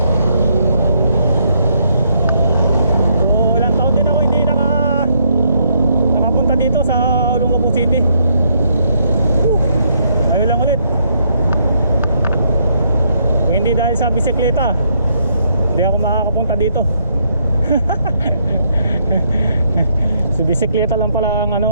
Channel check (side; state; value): both; inverted; correlation -0.73